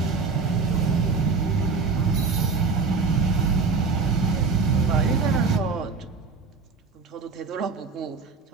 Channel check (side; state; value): left; quieter; 4.6 dB